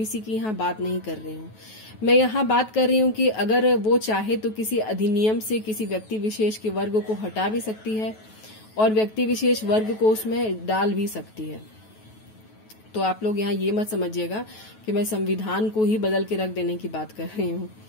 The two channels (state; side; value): late; right; 9.3 ms